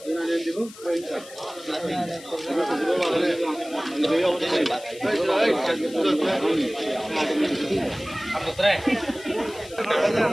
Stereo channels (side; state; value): left; noise; hiss, 18 dB below the sound